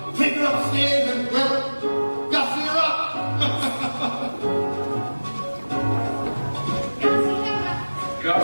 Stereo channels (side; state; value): both; inverted; correlation -1.00